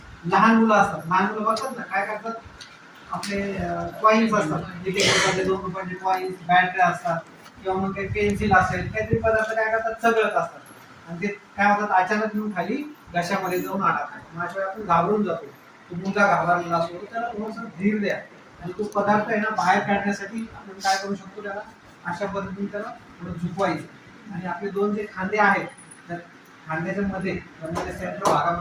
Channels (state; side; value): identical; both; correlation 1.00